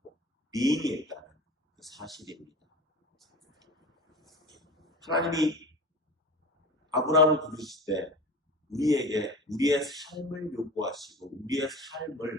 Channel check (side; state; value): both; normal; correlation 0.34